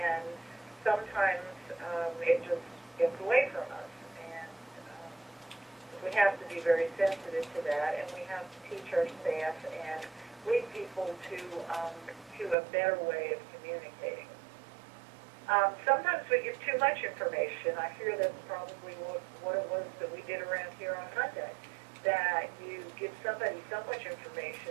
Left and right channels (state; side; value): drops out; left; at 12.6 s